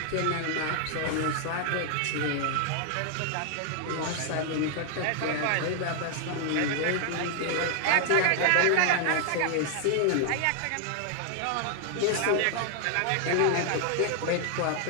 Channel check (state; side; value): different; both; correlation 0.00